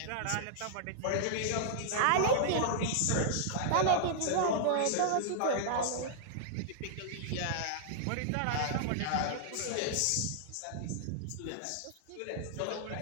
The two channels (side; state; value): both; different; correlation -0.01